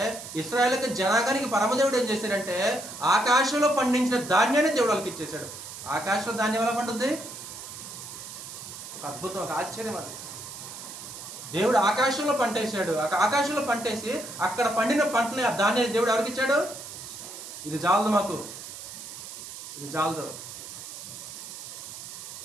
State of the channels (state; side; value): noise; right; hiss, 11 dB below the sound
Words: ఇశ్రాయేలుకి జనాంగానికి పరమదేవుడు ఏం చేశాడంటే ఆకాశంలో పండించిన ధాన్యాన్ని దేవుడు వాళ్ళకి ఇచ్చేశాడు. ఆకాశంలో ధాన్యం ఎలా పండుద్ది? ఒక అద్భుతం, ఒక ఆశ్చర్యం. అది దేవుడు ఆకాశంలో పంట వేసాడు. ఆకాశంలో పంటేసి అక్కడ పండిన పంటని ఆ ధాన్యాన్ని దేవుడు ఎవరికి ఇచ్చాడు? ఇది చాలదు మాకు, ఇది చాలదు.